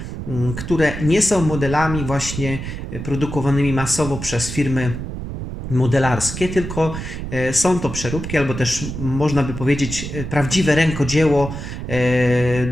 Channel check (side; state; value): right; noise; rumble, 7 dB below the sound